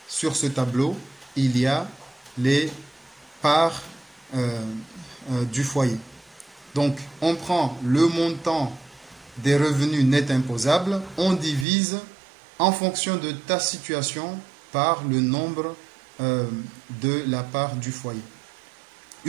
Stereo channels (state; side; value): drops out; left; at 11.7 s